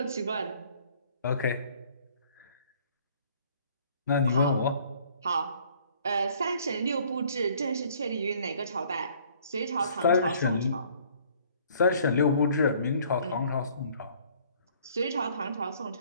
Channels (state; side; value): inverted; both; correlation -0.58